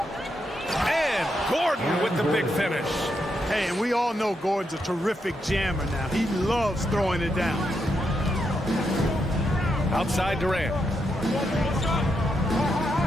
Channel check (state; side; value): normal; both; correlation 0.82